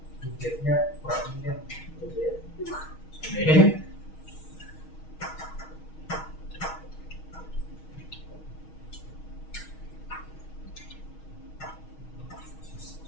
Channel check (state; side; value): late; right; 6.3 ms